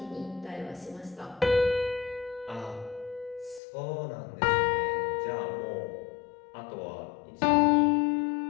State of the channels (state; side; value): drops out; right; at 3.6 s